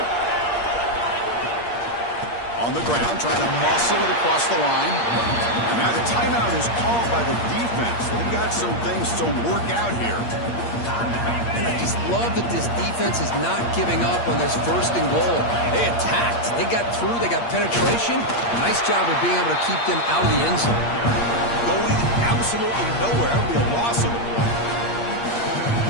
On the ground, trying to muscle it across the line. And now the timeout is called by the defense. They've got some things to work out here. And I just love that this defense is not giving up on this 1st and goal. They attacked. They got through. They got penetration. Nice job of being able to keep them out of the end zone. Going absolutely nowhere. That would be a loss of the play.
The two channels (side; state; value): right; late; 8.6 ms